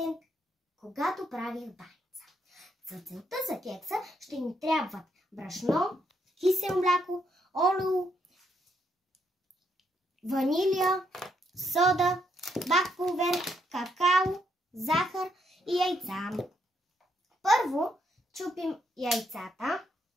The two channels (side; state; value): both; normal; correlation 0.75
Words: когато правих баница. За целта за кекса ще ни трябват брашно, кисело мляко, олио, ванилия, сода, бак пулвер, какао, захар и яйца. Първо чупим яйцата.